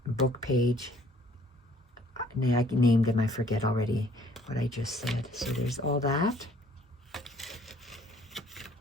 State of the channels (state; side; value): normal; both; correlation 0.59